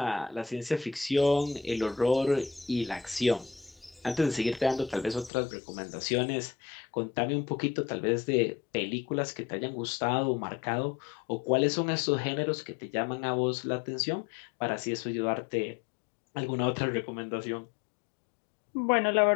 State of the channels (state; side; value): drops out; right; at 5.3 s